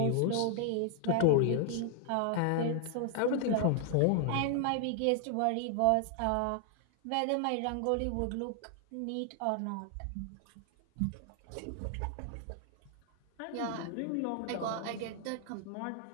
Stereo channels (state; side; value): different; both; correlation 0.00